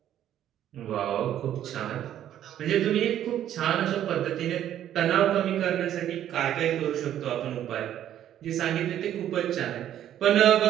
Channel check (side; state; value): left; quieter; 11.2 dB